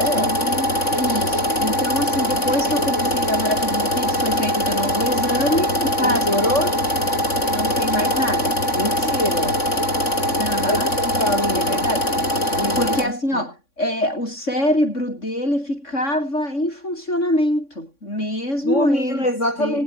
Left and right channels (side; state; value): right; late; 3.6 ms